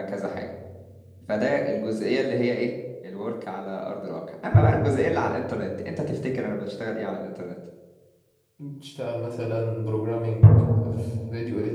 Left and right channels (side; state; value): both; identical; correlation 1.00